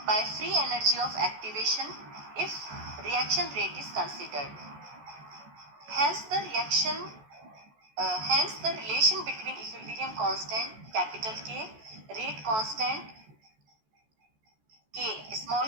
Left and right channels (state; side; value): late; left; 14 ms